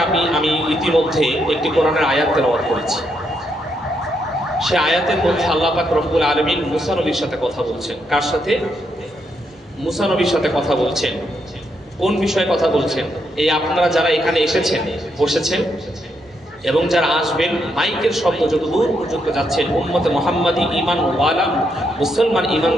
আমি ইতিমধ্যে একটি কোরআনের আয়াত তেলাওয়াত করেছি। সে আয়াতের মধ্যে আল্লাহ পাক রব্বুল আলামিন মুসা নবীর সাথে কথা বলছেন। কার সাথে? মুসা নবীর সাথে কথা বলছেন। কোন বিষয়ে কথা বলছেন? এই আপনারা যারা এখানে এসেছেন, বসেছেন, এবং যারা আসবেন, মাইকের শব্দ যত দূর পর্যন্ত যাচ্ছেন, উম্মতে মুহাম্মাদি ঈমান ওয়ালা মুসলমান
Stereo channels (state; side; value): normal; both; correlation 0.79